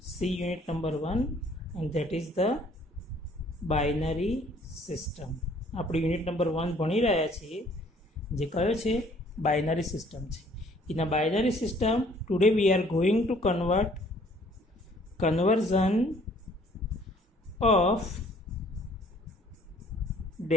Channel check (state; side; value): normal; both; correlation 0.58